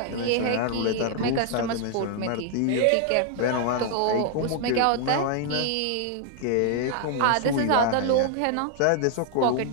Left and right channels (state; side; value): different; both; correlation 0.00